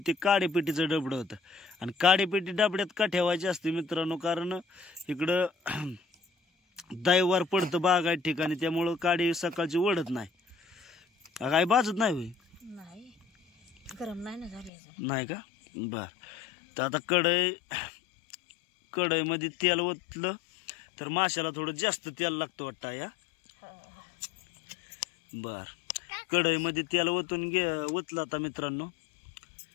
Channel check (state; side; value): drops out; right; at 14.7 s